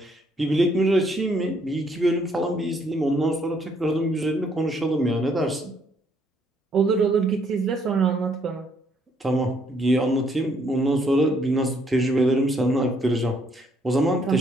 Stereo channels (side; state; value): both; normal; correlation 0.69